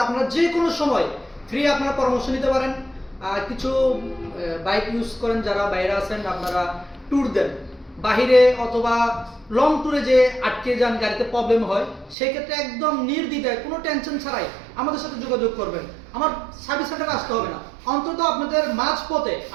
আপনারা যে কোনো সময় ফ্রি আপনারা পরামর্শ নিতে পারেন। কিছু বাইক ইউজ করেন যারা বাইরে আছেন, আপনারা ট্যুর দেন বাহিরে অথবা লং ট্যুরে, যে আটকে যান, গাড়িতে প্রবলেম হয়, সেক্ষেত্রে একদম নির্দ্বিধায় কোনো টেনশন ছাড়াই আমাদের সাথে যোগাযোগ করবেন। আমার সার্ভিস সেন্টারে আসতে হবে না, অন্তত আপনাদের মাঝপথে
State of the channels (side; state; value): left; drops out; at 12.2 s